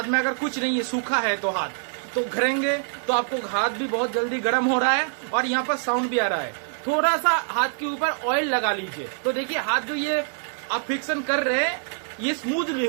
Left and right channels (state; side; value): silent; left; digital silence